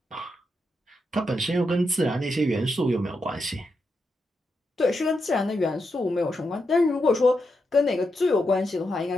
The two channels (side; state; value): both; normal; correlation 0.84